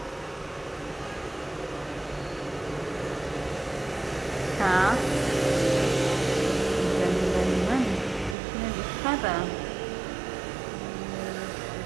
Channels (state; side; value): drops out; left; at 8.3 s